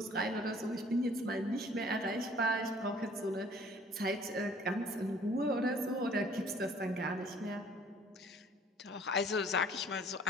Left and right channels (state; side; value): normal; both; correlation 0.54